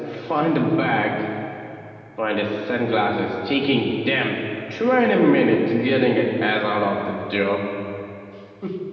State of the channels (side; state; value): both; identical; correlation 1.00